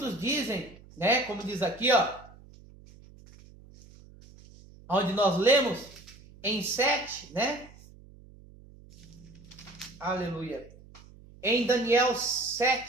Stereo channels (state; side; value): noise; right; hum, 22 dB below the sound